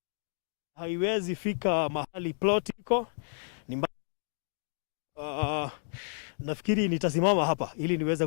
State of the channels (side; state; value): right; silent; digital silence